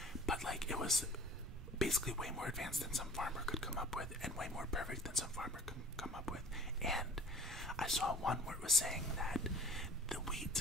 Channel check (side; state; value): right; noise; rumble, 12 dB below the sound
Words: but like it was basically way more advanced than some farmer could come up with, and way more perfect than some farmer could come up with. And I saw one where it was saying that the